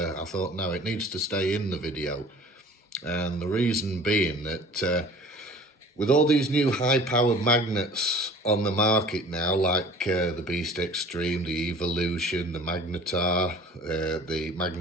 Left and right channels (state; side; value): normal; both; correlation 0.46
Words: I thought no, it needs to stay in the video. And the reason being that with all these new high-powered magnets on the market now, like the Beast Extreme, the Evolution, the Magnetar, the